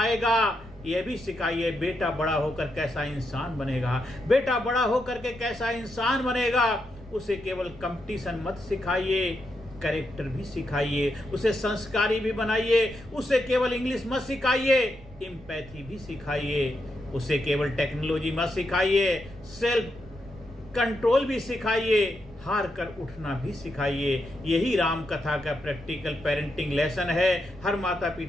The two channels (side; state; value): right; noise; rumble, 20 dB below the sound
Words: यह भी सिखाइए बेटा बड़ा होकर कैसा इंसान बनेगा, बेटा बड़ा होकर के कैसा इंसान बनेगा। उसे केवल कंपटीशन मत सिखाइए, कैरेक्टर भी सिखाइए, उसे संस्कारी भी बनाइए। उसे केवल इंग्लिश मत सिखाइए, एम्पैथी भी सिखाइए। उसे केवल टेक्नोलॉजी मत सिखाइए, सेल्फ कंट्रोल भी सिखाइए, हार कर उठना भी सिखाइए। यही राम कथा का प्रैक्टिकल पेरेंटिंग लेसन है। हर माता